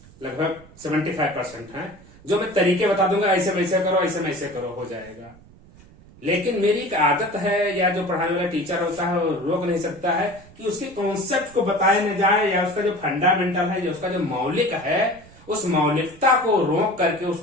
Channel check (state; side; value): noise; right; rumble, 23 dB below the sound